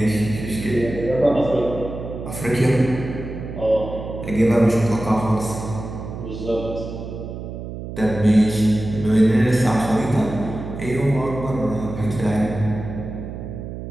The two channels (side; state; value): right; noise; hum, 9 dB below the sound